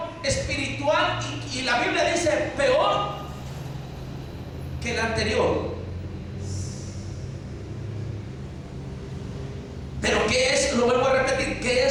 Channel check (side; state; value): both; identical; correlation 1.00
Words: espiritual y la Biblia dice peor que el anterior. Pero ¿qué es? Lo vuelvo a repetir, ¿qué